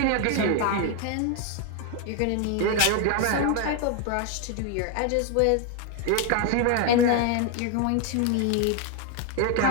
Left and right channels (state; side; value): different; both; correlation 0.01